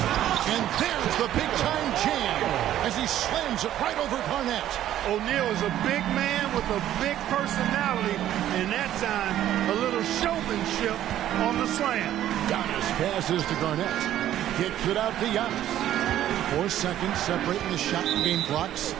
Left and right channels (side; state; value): left; quieter; 12.2 dB